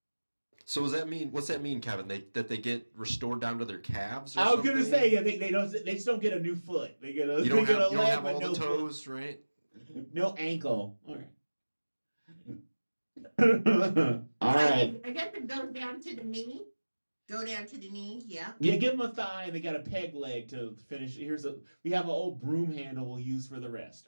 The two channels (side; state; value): both; inverted; correlation -1.00